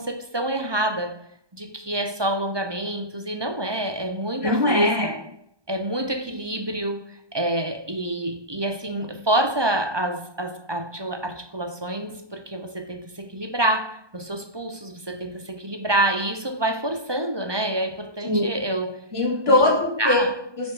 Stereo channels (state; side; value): late; left; 1.2 ms